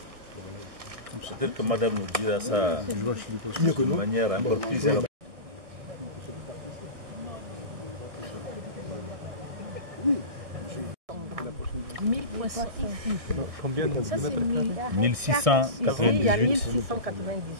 Peut-être que madame nous dira ça de manière encore plus élaborée. Combien de mètres carrés? 1600. Il y a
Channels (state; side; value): late; left; 1.6 ms